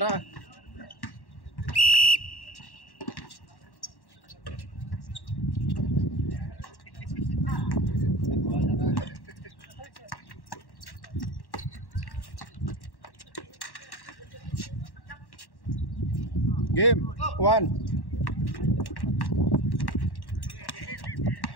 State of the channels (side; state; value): right; late; 1.1 ms